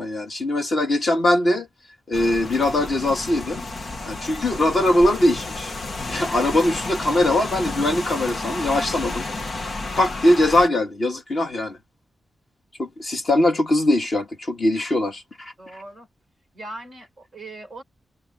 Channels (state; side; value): normal; both; correlation 0.86